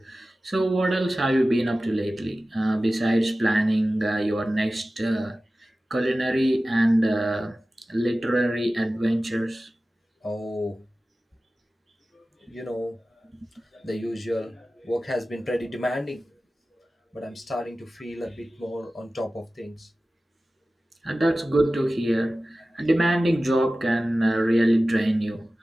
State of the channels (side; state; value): both; normal; correlation 0.96